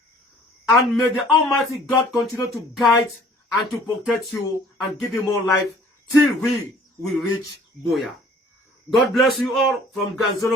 And may the Almighty God continue to guide and to protect you and give you more life till we will reach Boya. God bless you all from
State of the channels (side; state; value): both; normal; correlation 0.54